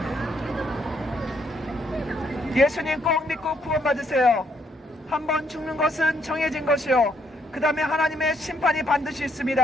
예수님 꼭 믿고 구원받으세요. 한번 죽는 것은 정해진 것이요 그 다음에 하나님의 심판이 반드시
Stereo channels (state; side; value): normal; both; correlation 0.72